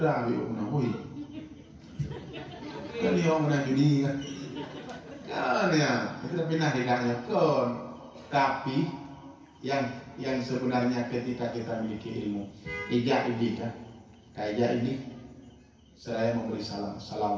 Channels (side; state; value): both; identical; correlation 1.00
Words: biu menahui. Kan dia orang nak judi kan? Kan ya, itu dah pindah tidaknya kon. Tapi yang sebenarnya ketika kita memiliki ilmu, ijak ini kan, kayak ini, saya memberi salam,